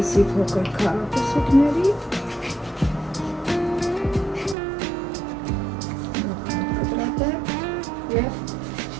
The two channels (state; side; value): drops out; left; at 4.5 s